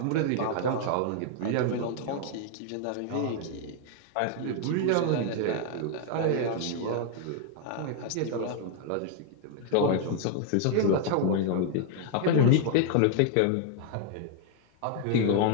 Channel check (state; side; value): different; both; correlation 0.00